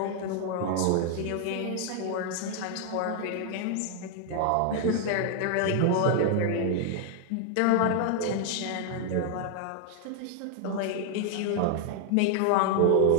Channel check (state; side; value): different; both; correlation 0.00